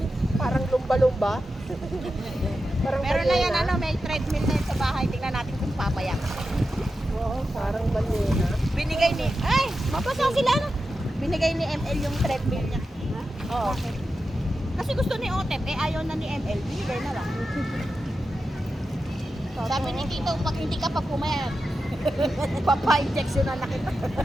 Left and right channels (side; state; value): both; normal; correlation 0.91